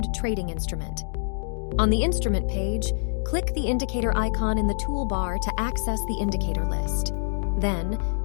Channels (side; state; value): right; silent; digital silence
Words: trading instrument. On the instrument page, click the indicator icon in the toolbar to access the indicator list. Then,